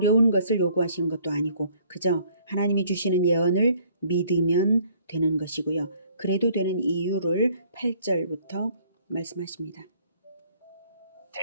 것을 요구하시는 것도 아니고 그저 하나님이 주시는 예언을 믿으면 되는 것이고요. 그래도 되는 이유를 8절부터 말씀하십니다.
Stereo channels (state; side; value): inverted; both; correlation -0.60